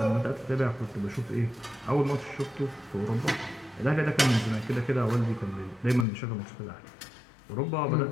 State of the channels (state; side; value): drops out; right; at 6.1 s